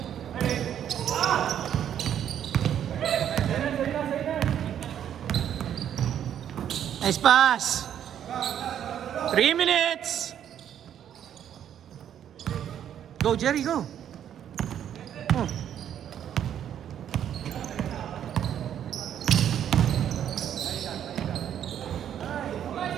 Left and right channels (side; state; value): left; quieter; 9.8 dB